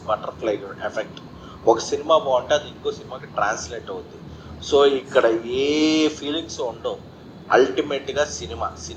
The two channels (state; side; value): identical; both; correlation 1.00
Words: బటర్ఫ్లై ఎఫెక్ట్. ఒక సినిమా బాగుంటే అది ఇంకో సినిమాకి ట్రాన్స్లేట్ అవుతుంది. సో ఇక్కడ ఏ ఫీలింగ్స్ ఉండవు. అల్టిమేట్గా